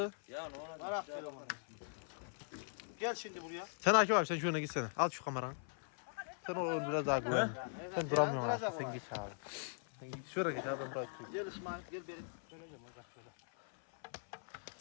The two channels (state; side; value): silent; right; 51 dB below the other